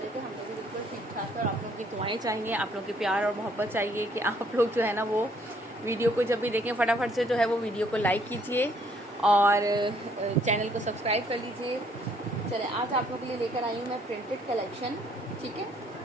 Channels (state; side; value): normal; both; correlation 0.65